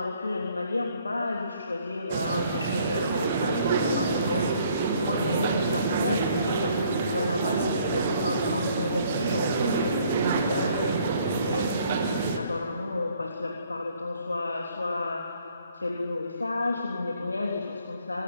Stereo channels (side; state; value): both; inverted; correlation -0.63